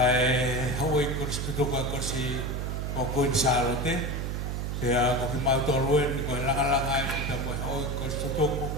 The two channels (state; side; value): noise; right; hum, 2 dB below the sound